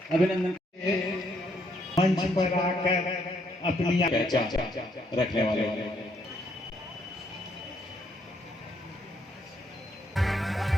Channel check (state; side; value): normal; both; correlation 0.72